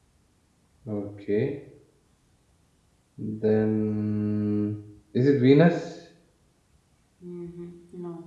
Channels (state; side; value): identical; both; correlation 1.00